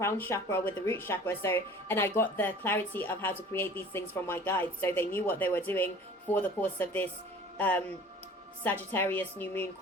chakra with the root chakra. So, and I got the clarity of how to create these things from my guides, so they knew what they were doing for the course of this Sagittarius new moon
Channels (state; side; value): normal; both; correlation 0.46